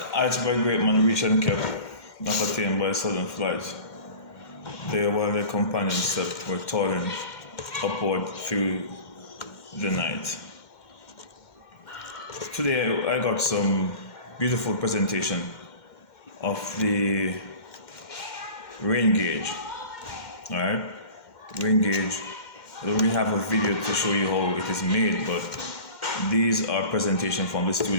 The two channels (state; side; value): late; right; 2.1 ms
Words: Iceberg great man reached and kept, not attained by sudden flight. They, while their companions slept, were toiling upward through the night. Today I got some beautiful presentation of the rain gauge. Alright? Rain gauge. I don't really have a video to show you how it is made, but these are presentation from the